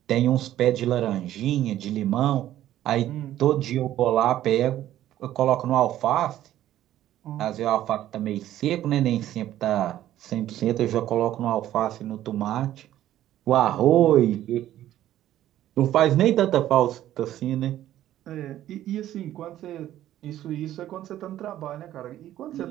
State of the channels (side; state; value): left; quieter; 12.9 dB